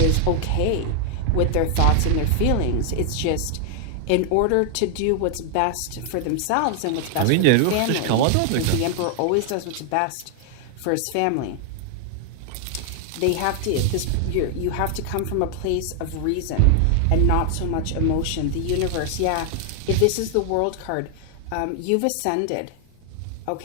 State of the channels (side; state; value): both; different; correlation 0.00